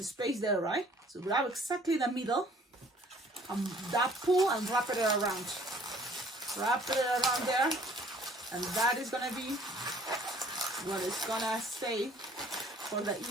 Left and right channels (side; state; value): both; normal; correlation 0.56